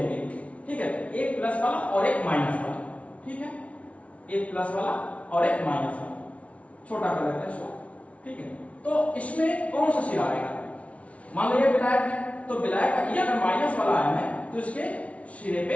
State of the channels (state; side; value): late; right; 0.064 ms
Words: ठीक है, एक प्लस वाला और एक माइनस वाला, ठीक है, एक प्लस वाला और एक माइनस वाला, छोटा कर लेते हैं इसको, ठीक है। तो इसमें कौन सा सिरा आएगा? मान लो ये विलायक है, तो विलायक का ये अगर माइनस वाला आयन है तो इसके सिरे